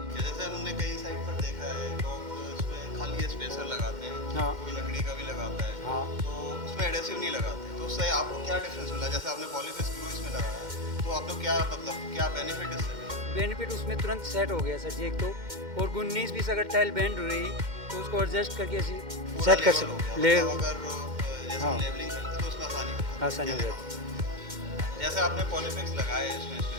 कि जैसे हमने कई साइड पर देखा है लोग इसमें खाली स्पेसर लगाते हैं, हाँ कोई लकड़ी का भी लगाता है, हाँ। तो उसमें एडेसिव नहीं लगाते, तो उससे आपको क्या डिफरेंस मिला? जैसे आपने पॉलीफिक्स ग्लू इसमें लगाया, तो आपको क्या मतलब क्या बेनिफिट इससे मिला? बेनिफिट उसमें तुरंत सेट हो गया सर जी, एक तो। और 19-20 अगर टाइल बेंड हो रही तो उसको एडजस्ट करके ऐसे पूरा सेट कर लेवल हो गया, सकते ले। मतलब अगर जैसे हम हाँ, लेवलिंग करते तो उसमें आसानी हो जाती है, आसानी हो कहने का जाती है। मतलब। जैसे आपने पॉलीफिक्स लगाए इसमें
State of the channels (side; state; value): left; late; 2.1 ms